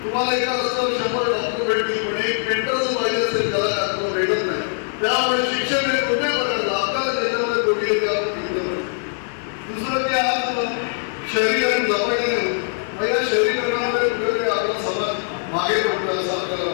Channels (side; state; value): right; silent; digital silence